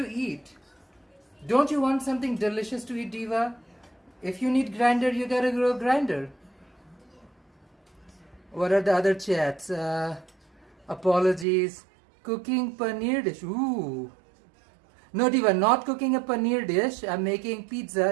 eat. Don't you want something delicious to eat, Diva? If you need grinder, you gotta grow grinder. What are the other chats? Apologies. Cooking paneer dish. Ooh. No, Diva, not cooking a paneer dish. I'm making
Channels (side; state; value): left; drops out; at 11.5 s